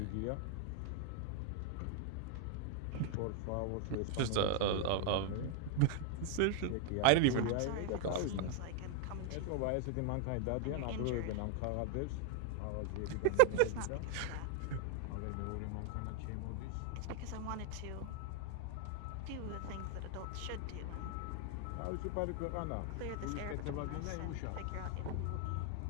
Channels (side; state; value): both; different; correlation 0.01